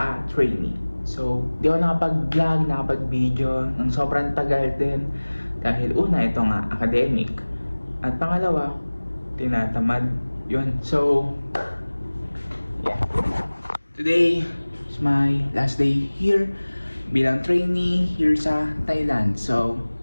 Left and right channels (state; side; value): inverted; both; correlation -1.00